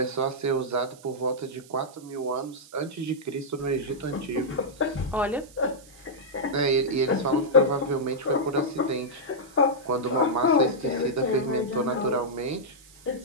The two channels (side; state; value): right; noise; hiss, 23 dB below the sound